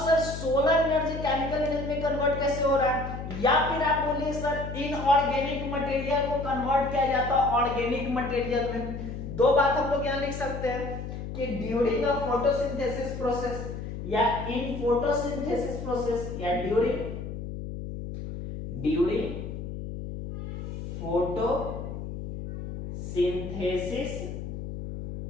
solar energy chemical energy में कन्वर्ट कैसे हो रहा है, या फिर आप बोलिए सर इनऑर्गेनिक मटेरियल को कन्वर्ट किया जाता है ऑर्गेनिक मटेरियल में। दो बात हम लोग यहां लिख सकते हैं कि ड्यूरिंग द फोटोसिंथेसिस प्रोसेस या इन फोटोसिंथेसिस प्रोसेस या ड्यूरिंग फोटोसिंथेसिस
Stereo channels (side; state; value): left; noise; hum, 7 dB below the sound